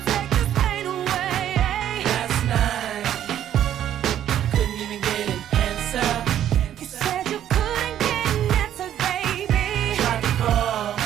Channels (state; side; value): quieter; left; 10.9 dB